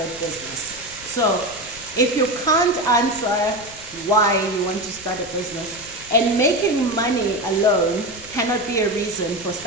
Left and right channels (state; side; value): noise; left; rumble, 21 dB below the sound